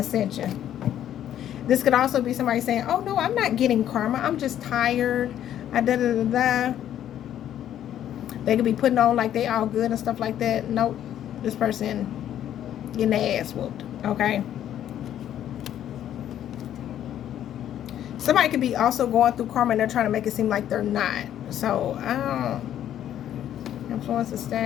This could also be somebody saying, oh no, I'm not getting karma, I'm just tired, da-da-da-da-da. They could be putting on like they all good and stuff like that. Nope, this person getting their ass whooped, okay? Somebody could be also going through karma and they're trying to make it seem like they're not. So, I don't influence the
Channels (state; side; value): quieter; right; 11.0 dB